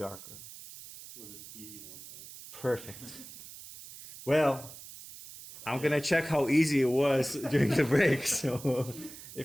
Was an easy one, right? Perfect. Well, I'm gonna check how easy it was during the break. So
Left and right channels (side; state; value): right; noise; hiss, 15 dB below the sound